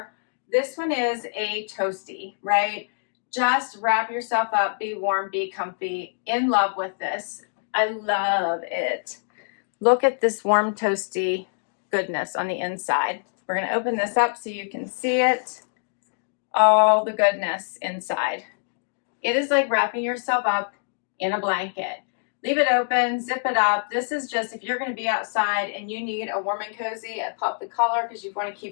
This one is a toasty, right? Just wrap yourself up, be warm, be comfy. In love with this. I love it. Look at this warm, toasty goodness on the inside. We're going to open this up so you can see it. All the goodness inside. It is like wrapping yourself up in a blanket. Leave it open, zip it up. This is just if you're going to be outside and you need a warm and cozy, pop the collar because you want to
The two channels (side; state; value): right; silent; digital silence